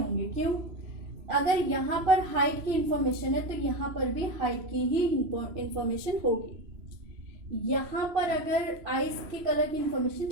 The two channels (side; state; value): left; late; 3.0 ms